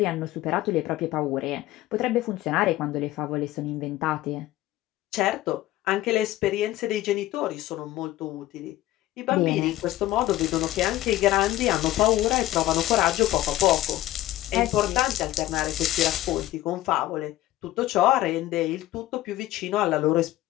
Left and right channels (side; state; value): right; quieter; 15.3 dB